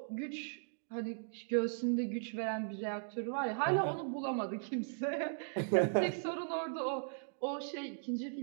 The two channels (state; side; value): silent; left; digital silence